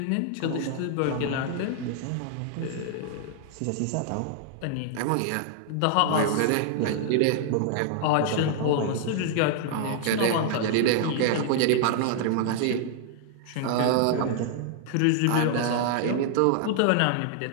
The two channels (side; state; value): both; different; correlation -0.01